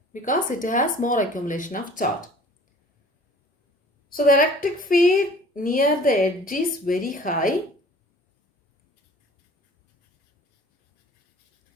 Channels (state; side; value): normal; both; correlation 0.49